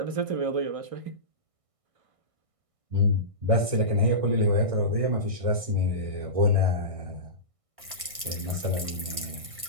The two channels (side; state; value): left; late; 1.6 ms